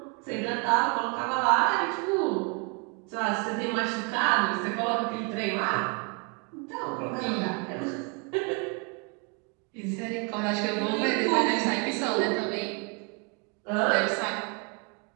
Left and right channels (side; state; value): left; quieter; 33.2 dB